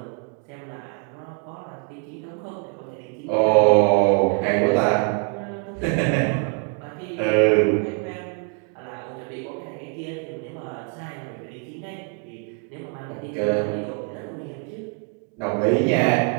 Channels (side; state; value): left; quieter; 36.2 dB